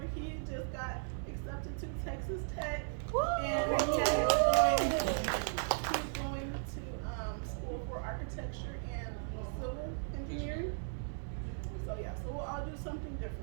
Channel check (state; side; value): silent; left; 53 dB below the other